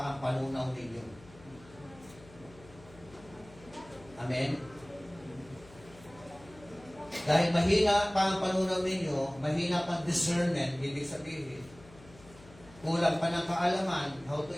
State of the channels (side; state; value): left; noise; hum, 22 dB below the sound